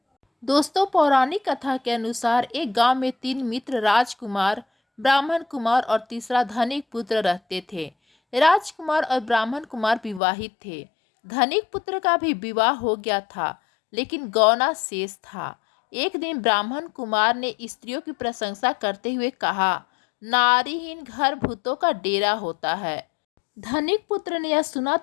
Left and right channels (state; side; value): drops out; right; at 10.2 s